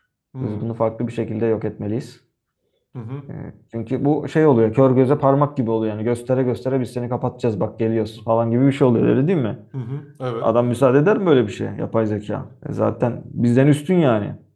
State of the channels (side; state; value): both; identical; correlation 1.00